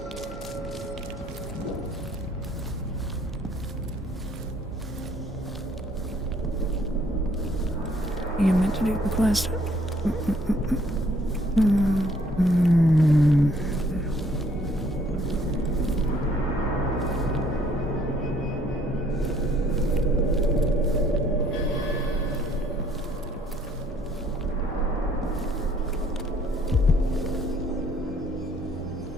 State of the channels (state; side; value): normal; both; correlation 0.63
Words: You meant to do the quest.